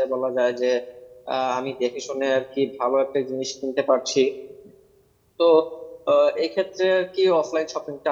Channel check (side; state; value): both; identical; correlation 1.00